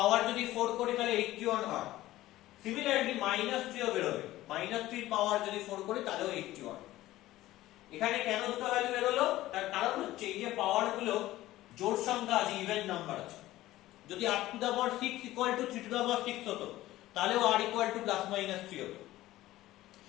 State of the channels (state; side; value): quieter; right; 16.0 dB